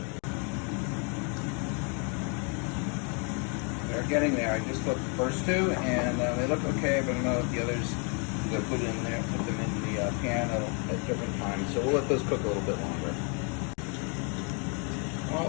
They're getting there. I just cooked the first 2, and they look okay, but I don't know if the others I'm going to put them in the pan at different times. So we'll let those cook a little bit longer. All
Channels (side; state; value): right; quieter; 36.4 dB